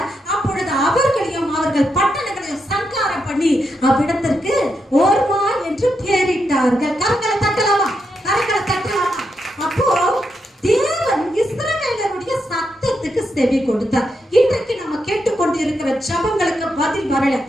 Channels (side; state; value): both; normal; correlation 0.83